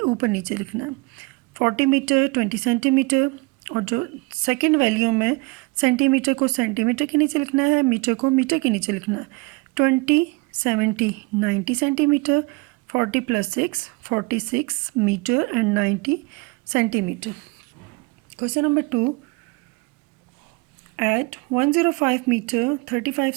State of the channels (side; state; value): left; quieter; 26.0 dB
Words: नीचे लिखना है. 40 मीटर 20 सेंटीमीटर, और जो सेकेंड वैल्यू में सेंटीमीटर को सेंटीमीटर के नीचे लिखना है, मीटर को मीटर के नीचे लिखना है. 20 70 90 centimetre, 40 + 6 46 metre and 90 centimetre. Question number 2. At 105 meter 35